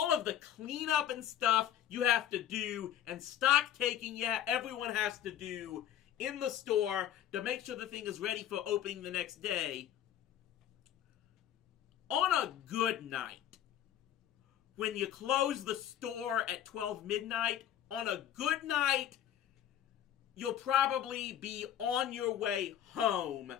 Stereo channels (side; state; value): right; quieter; 10.9 dB